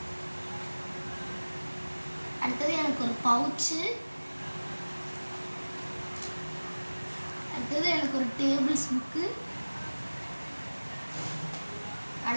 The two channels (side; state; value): both; inverted; correlation -1.00